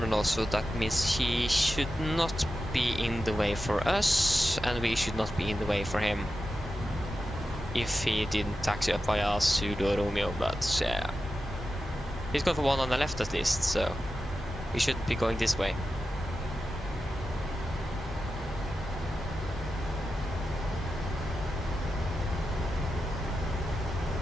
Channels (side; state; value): both; normal; correlation 0.91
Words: so that means he should not be in the way for us, and we should not be in the way for him. If he didn't taxi up via Sudo Romeo, but yeah. He's going for one on the left at least, so we shouldn't be going this way.